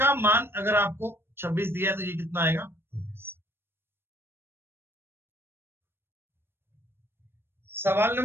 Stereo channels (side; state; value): left; late; 0.11 ms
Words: मान अगर आपको 26 दिया है तो ये कितना आएगा? 19। सवाल